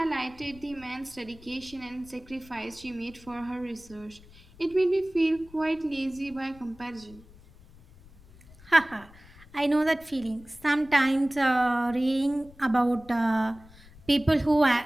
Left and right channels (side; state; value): left; noise; rumble, 23 dB below the sound